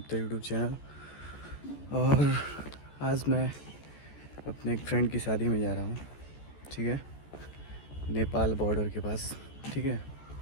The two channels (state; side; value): late; right; 14 ms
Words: YouTube channel. और आज मैं अपने एक फ्रेंड की शादी में जा रहा हूँ। ठीक है, नेपाल बॉर्डर के पास। ठीक है,